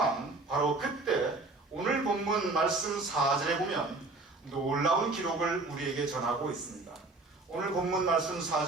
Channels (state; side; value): quieter; left; 3.2 dB